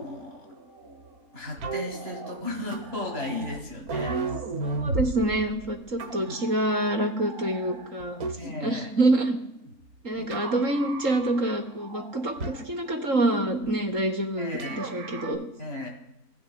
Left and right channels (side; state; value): left; late; 3.8 ms